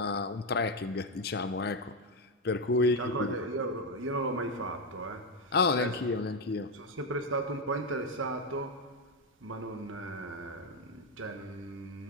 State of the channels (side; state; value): both; normal; correlation 0.07